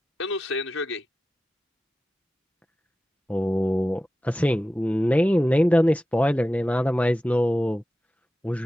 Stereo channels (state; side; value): normal; both; correlation 0.94